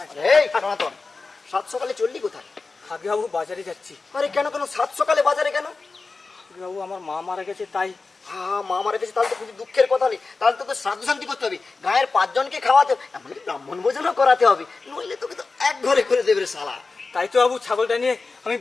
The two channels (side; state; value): right; quieter; 4.0 dB